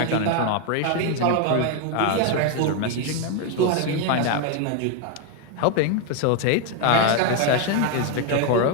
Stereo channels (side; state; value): both; different; correlation 0.01